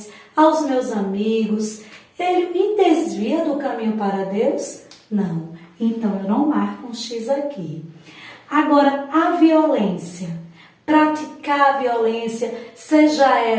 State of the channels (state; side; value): identical; both; correlation 1.00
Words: aos meus amigos, ele me desvia do caminho para Deus? Não. Então, eu não marco um X aqui. Agora, a violência. Praticar a violência, seja